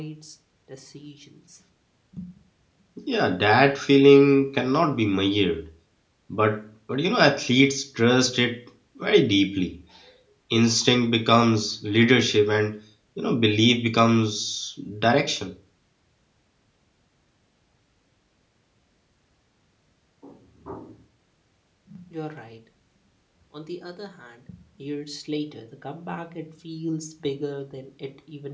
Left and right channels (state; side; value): identical; both; correlation 1.00